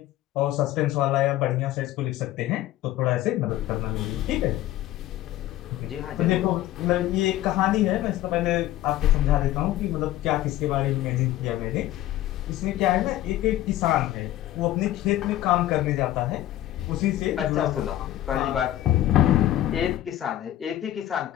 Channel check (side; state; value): right; quieter; 14.1 dB